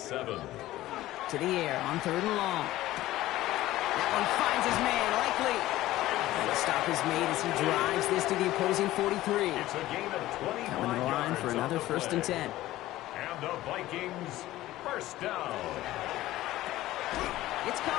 To the air on third and long. That one finds his man, Likely. And the stop is made as he drives this to the opposing 43. It's a gain of 25 Coming to the line for another first and 10. And the Vikings first down. It's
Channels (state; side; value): quieter; right; 15.8 dB